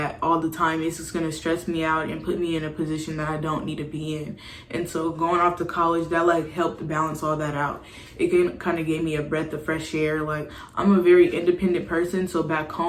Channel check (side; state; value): both; identical; correlation 1.00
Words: all the time. It's just gonna stress me out and put me in a position that I don't need to be in. And so going off to college, that like helped balance all that out. it kind of gave me a breath of fresh air. Like, I'm a very independent person, so back